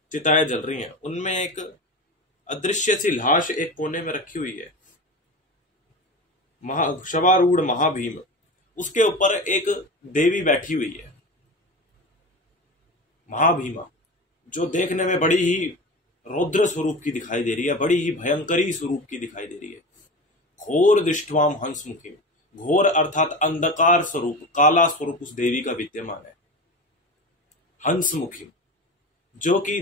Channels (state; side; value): normal; both; correlation 0.28